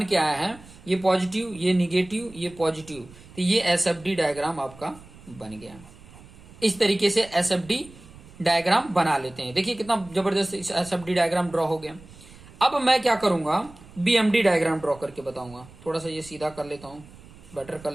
के आया है, ये पॉजिटिव, ये निगेटिव, ये पॉजिटिव, तो ये एसएफडी डायग्राम आपका बन गया। इस तरीके से एसएफडी डायग्राम बना लेते हैं। देखिए कितना जबरदस्त एसएफडी डायग्राम ड्रॉ हो गया। अब मैं क्या करूंगा, बीएमडी डायग्राम ड्रॉ करके बताऊंगा। थोड़ा सा ये सीधा कर लेता हूं, बेटर कर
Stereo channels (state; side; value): noise; right; rumble, 21 dB below the sound